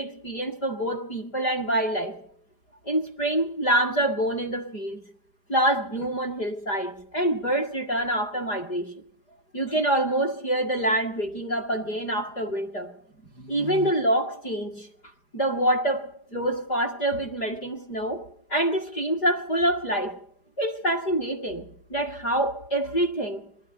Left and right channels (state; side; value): late; right; 4.9 ms